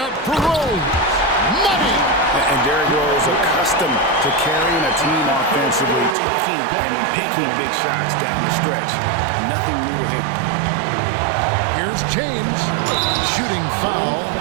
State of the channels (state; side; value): drops out; left; at 6.2 s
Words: for Rose. Money! And Derrick Rose, accustomed to carrying a team offensively, taking and making big shots down the stretch. Nothing new to him. Here's James. Shooting foul